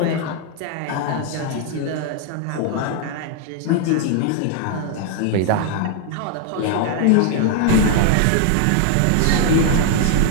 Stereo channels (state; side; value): different; both; correlation 0.00